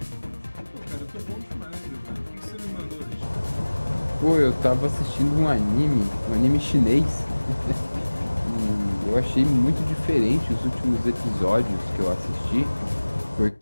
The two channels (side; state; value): both; inverted; correlation -1.00